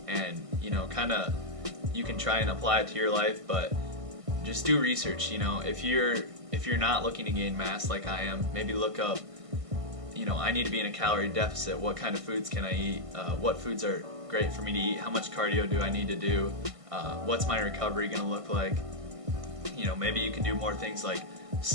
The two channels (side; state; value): left; late; 1.5 ms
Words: and, you know, you can try and apply it to your life, but just do research. You know, if you're if you're not looking to gain mass like I am, maybe look up, I need to be in a calorie deficit. What kind of foods can I eat? What foods are great for me to eat? How much cardio do I need to do? What's my recovery going to look like? Maybe you can do more things like